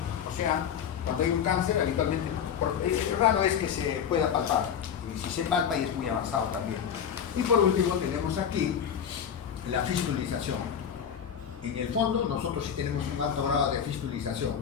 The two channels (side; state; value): right; quieter; 8.2 dB